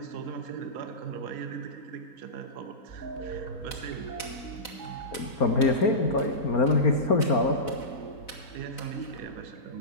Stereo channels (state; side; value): late; right; 4.0 ms